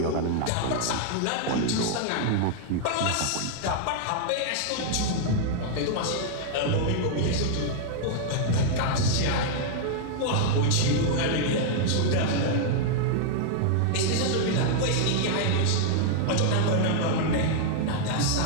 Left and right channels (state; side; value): different; both; correlation -0.01